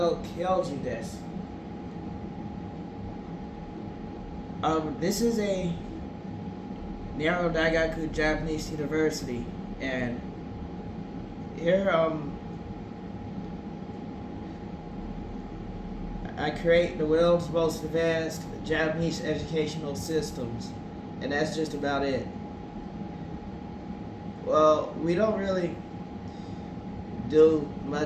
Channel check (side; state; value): both; identical; correlation 1.00